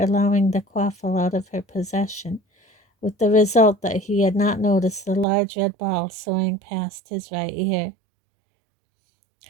the quaffle out of her possession, with the result that he had not noticed the large red ball soaring past his right ear.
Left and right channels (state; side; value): drops out; left; at 5.2 s